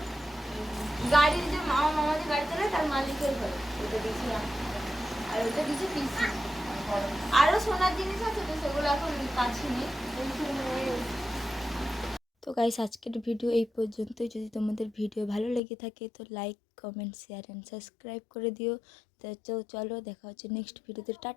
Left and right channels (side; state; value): right; drops out; at 15.6 s